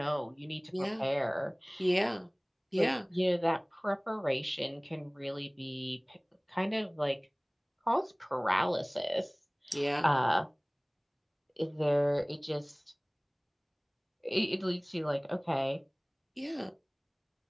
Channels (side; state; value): both; identical; correlation 1.00